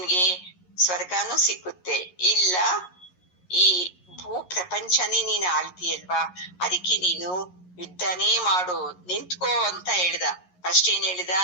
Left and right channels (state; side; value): late; right; 11 ms